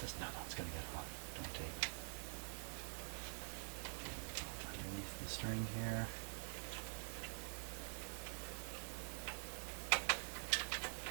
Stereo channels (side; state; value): left; silent; digital silence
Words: No, it's going to get hot. Don't tape it. Underneath the string here.